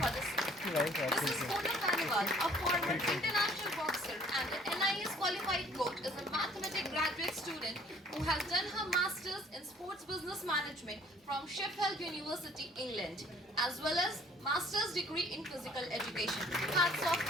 the same. Mrs. Poonam Baniwal, a former international boxer and an NIS qualified coach, is a mathematics graduate student who has done her masters in sports business management from Sheffield University, England, as well as master's degree in physical education. Hats off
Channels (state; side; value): normal; both; correlation 0.56